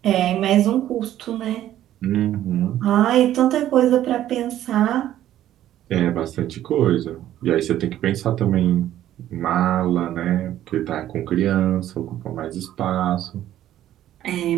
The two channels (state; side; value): quieter; left; 12.5 dB